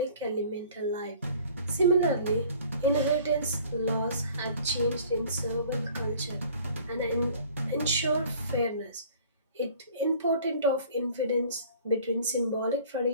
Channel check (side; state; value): both; inverted; correlation -0.50